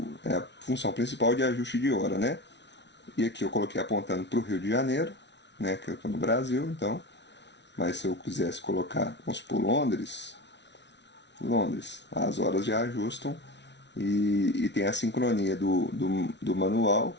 a função principal de ajuste de hora, né? E aqui eu coloquei apontando para o Rio de Janeiro, né? Que eu estou no Brasil, então. Mas se eu quisesse colocar, vamos supor, Londres, as horas já ajustam e tem a sincronia do manual,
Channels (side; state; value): right; late; 0.51 ms